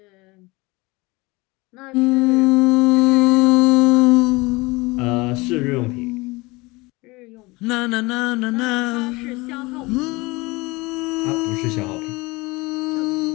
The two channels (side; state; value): right; quieter; 23.4 dB